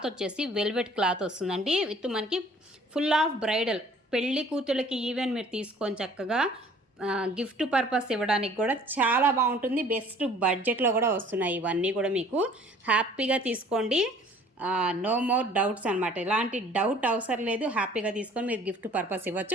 వచ్చేసి వెల్వెట్ క్లాత్ వస్తుందండి. విత్ మనకి ఫుల్ ఆఫ్ బ్రైడల్ పెళ్లి కూతుళ్ళకి ఈవెన్ మీరు తీసుకొని చక్కగా గిఫ్ట్ పర్పస్ ఇవ్వడానికి కూడా చాలా బాగుంటుంది. బెస్ట్ బడ్జెట్లో కూడా వస్తున్నాయి ఇవన్నీ కూడా. మీకు హ్యాపీగా తీసుకోండి, నో మోర్ డౌట్స్ అనమాట. ఇలాంటి డౌట్ అవసరం లేదు, హ్యాపీగా తీసుకొని మీరు గిఫ్ట్ పర్పస్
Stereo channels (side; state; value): both; normal; correlation 0.53